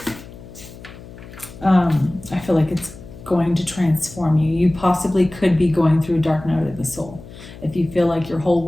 I feel like it's going to transform you. You possibly could be going through a dark night of the soul. If you feel like your whole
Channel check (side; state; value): left; noise; hum, 17 dB below the sound